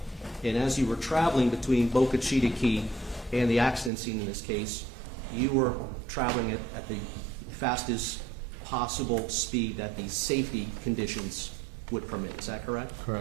And as you were traveling between Boca Chita Key and the accident scene in this case, you were traveling at the fastest possible speed that the safety conditions would permit. Is that correct?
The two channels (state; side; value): drops out; left; at 3.9 s